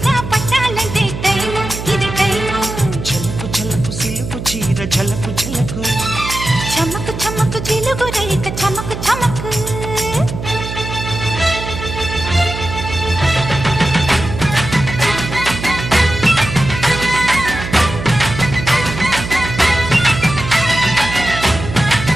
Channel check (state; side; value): noise; right; hum, 7 dB below the sound